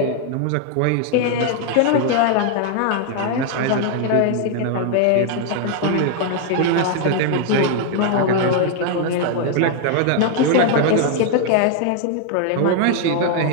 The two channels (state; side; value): different; both; correlation 0.00